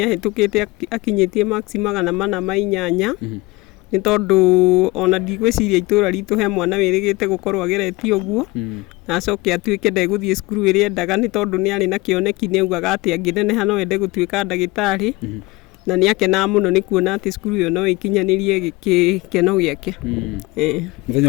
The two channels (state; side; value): quieter; right; 22.3 dB